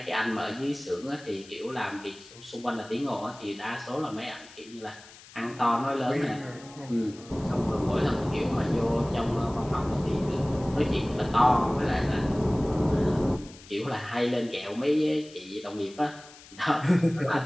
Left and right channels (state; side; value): noise; left; hiss, 21 dB below the sound